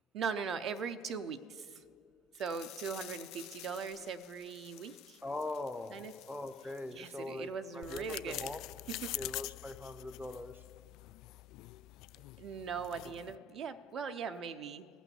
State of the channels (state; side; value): normal; both; correlation 0.54